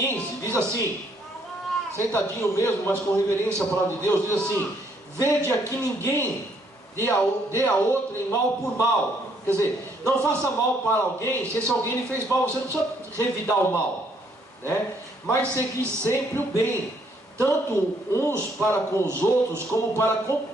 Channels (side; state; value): both; normal; correlation 0.68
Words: diz assim, sentadinho mesmo, mas com reverência à palavra de Deus, diz assim: vede aqui ninguém dê a outro em mal por mal. Quer dizer, não faça mal para alguém, se esse alguém lhe fez mal, você não precisa revidar o mal, né? Mas segui sempre o bem, tanto uns para com os outros, como para com